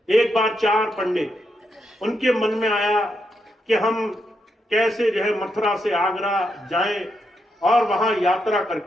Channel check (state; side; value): normal; both; correlation 0.82